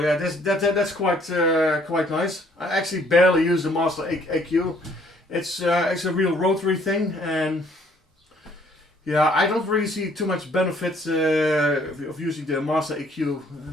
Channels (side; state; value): both; normal; correlation 0.62